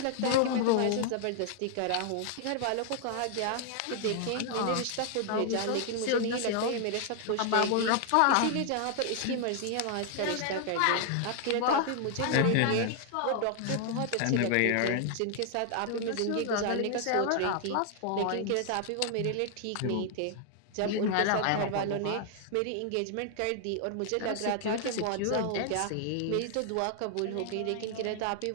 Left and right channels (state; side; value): different; both; correlation 0.00